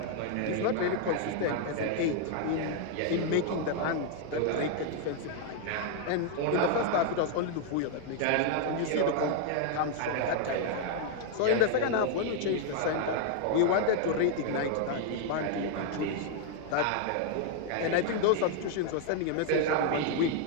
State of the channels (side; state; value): both; different; correlation 0.00